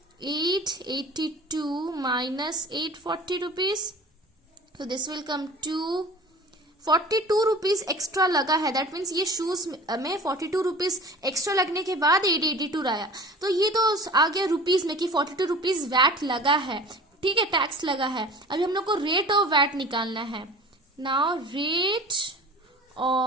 882 minus 840 rupees, so this will come to 42 rupees extra लगा है। दैट मीन्स ये शूज में 42 रुपीज एक्स्ट्रा लगने के बाद 882 आया। तो ये तो आ गया रुपीज में कि 42 रुपीज वैट लगा है। ठीक है, टैक्स लगा है। अभी हम लोग को रेट ऑफ वैट निकालना है। नाउ रेट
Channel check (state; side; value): normal; both; correlation 0.41